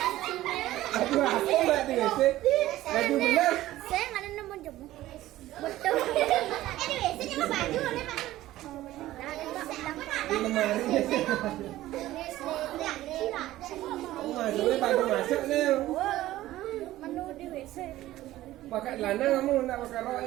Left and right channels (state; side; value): quieter; left; 15.4 dB